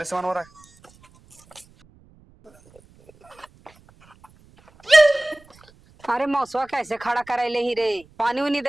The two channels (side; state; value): right; noise; rumble, 29 dB below the sound